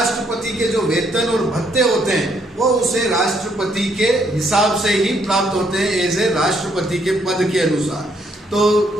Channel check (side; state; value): both; normal; correlation 0.71